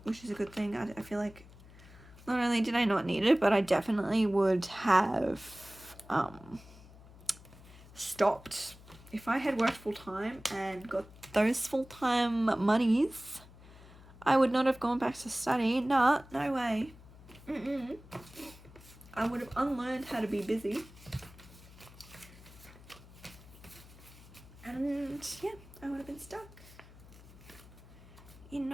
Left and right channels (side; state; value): left; noise; hum, 20 dB below the sound